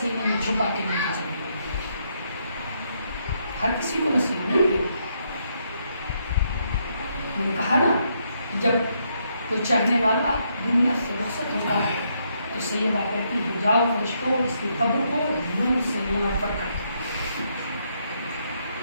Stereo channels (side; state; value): both; inverted; correlation -0.76